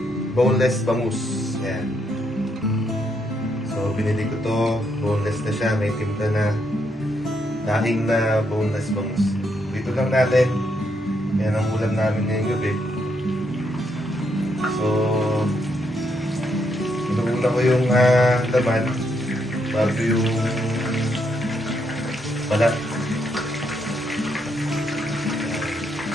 boneless bangus. Yan. So, binili ko to. Boneless na siya. May timpla na daing na boneless bangus. Dito lang natin. Yan ang ulam namin ngayong gabi. So, inuuna ko yung laman bago yung balat.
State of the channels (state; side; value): normal; both; correlation 0.77